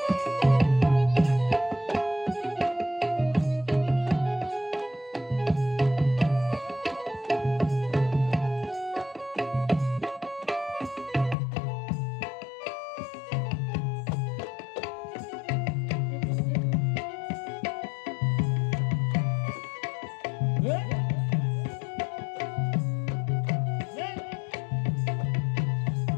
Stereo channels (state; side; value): drops out; right; at 11.4 s